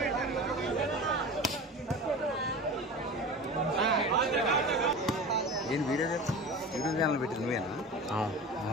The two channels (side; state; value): both; normal; correlation 0.33